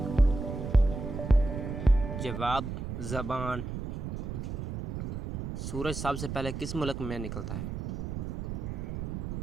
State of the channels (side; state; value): right; noise; rumble, 5 dB below the sound